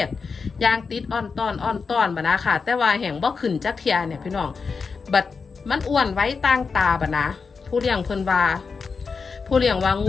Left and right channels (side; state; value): right; quieter; 5.0 dB